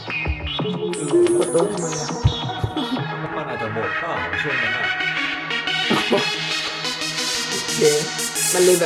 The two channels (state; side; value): identical; both; correlation 1.00